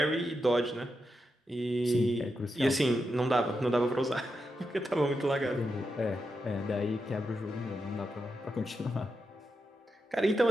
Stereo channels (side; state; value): both; normal; correlation 0.86